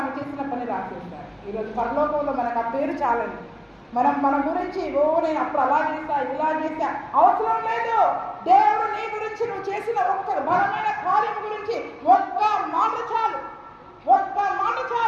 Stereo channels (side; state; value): both; identical; correlation 1.00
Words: ఆమె చేసిన పని రాసేశారు. ఈరోజు పరలోకంలో మనకు ఆ పేరు చాలండి. మన గురించి నేను అప్పుడు అలా చేస్తా, ఇలా చేస్తా అవసరం లేదు. దేవుడు నీ గురించి, నువ్వు చేసిన ఒక్క బలమైన కార్యం గురించి ఒక్క మాట